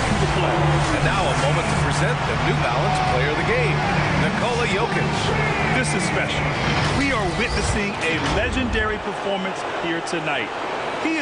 the play. And now a moment to present the New Balance Player of the Game, Nikola Jokic. This is special. We are witnessing a legendary performance here tonight. He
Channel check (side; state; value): both; identical; correlation 1.00